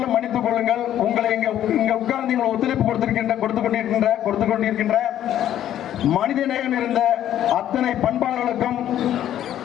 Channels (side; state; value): right; quieter; 11.4 dB